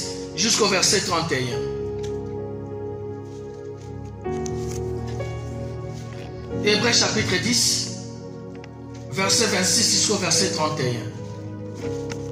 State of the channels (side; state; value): both; identical; correlation 1.00